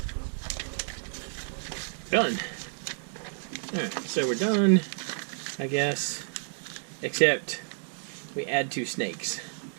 done. Alright, so we're done, I guess. Except we add 2 snakes.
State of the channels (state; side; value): silent; left; digital silence